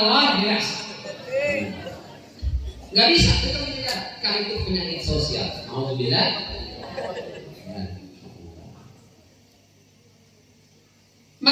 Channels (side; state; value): both; identical; correlation 1.00